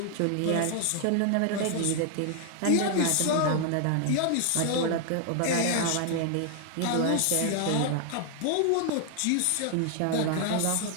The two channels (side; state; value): both; different; correlation 0.00